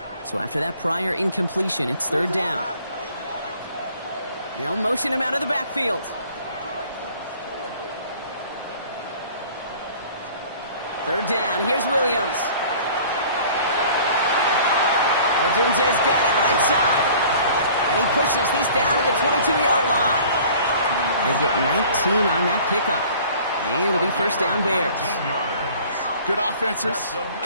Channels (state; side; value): inverted; both; correlation -0.49